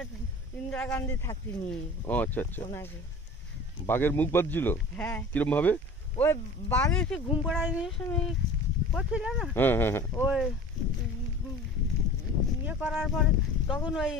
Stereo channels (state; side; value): normal; both; correlation 0.40